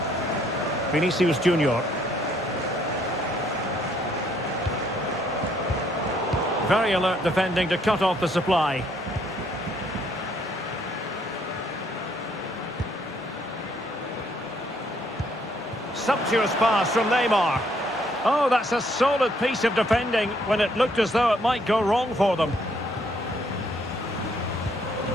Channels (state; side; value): normal; both; correlation 0.68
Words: Vinicius Junior. Very alert defending to cut off the supply. Sumptuous pass from Neymar. Oh, that's a solid piece of defending when it looked as though it might go wrong for them.